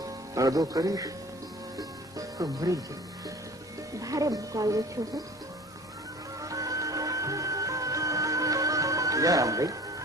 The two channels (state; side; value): normal; both; correlation 0.44